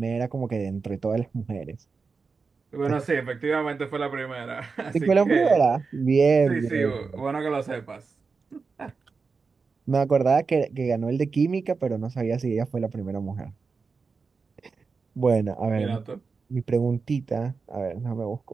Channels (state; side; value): quieter; left; 4.8 dB